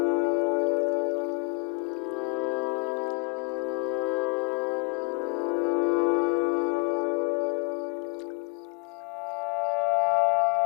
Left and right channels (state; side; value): quieter; right; 30.1 dB